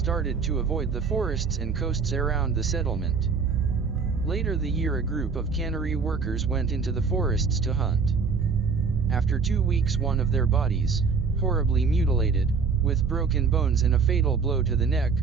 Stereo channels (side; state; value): left; quieter; 5.3 dB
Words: to avoid the forests and coasts around the settlement. Later the year a group of cannery workers went into the forests to hunt. After 2 weeks one of their bodies, horribly mutilated, with broken bones and a fatal blow to the neck,